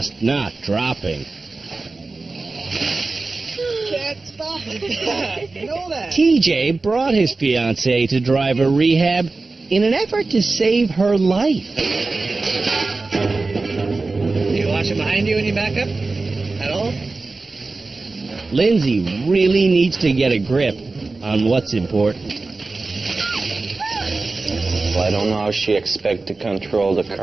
not dropping. TJ brought his fiancée to driver rehab in an effort to save her life. Do you watch it behind you when you back up? At all? Lindsay really needs to get a grip on what's important. Well, I don't know how she expects to control the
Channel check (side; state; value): left; quieter; 3.6 dB